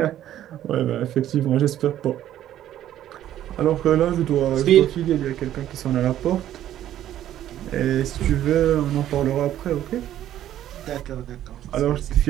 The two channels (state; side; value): quieter; left; 12.1 dB